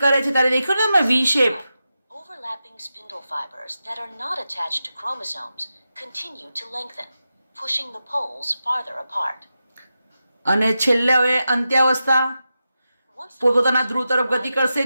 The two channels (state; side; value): inverted; both; correlation -0.90